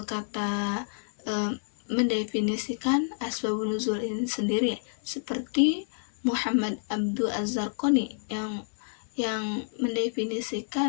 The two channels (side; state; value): right; silent; 59 dB below the other